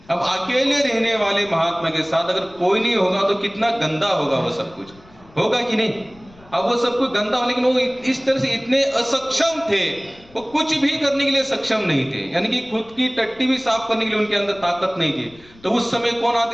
अब अकेले रहने वाले महात्मा के साथ अगर कोई नहीं होगा तो कितना गंदा होगा वो सब कुछ, होगा कि नहीं? अब वो सब कुछ गंदा हो, लेकिन वो इस तरह से इतने असक्षम थे, वो कुछ भी करने के लिए सक्षम नहीं थे। यानी कि खुद की टट्टी भी साफ करने के लिए उनके अंदर ताकत नहीं थी। तो उस समय कौन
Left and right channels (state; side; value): noise; left; rumble, 25 dB below the sound